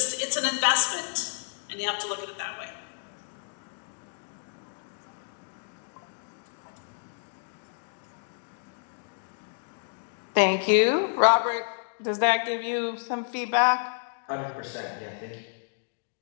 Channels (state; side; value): silent; right; digital silence